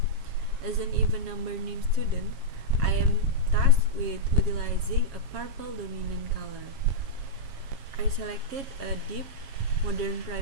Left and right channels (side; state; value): left; late; 7.3 ms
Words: As an even number named student, I am tasked with utilizing a purple dominant color. I selected a deep modern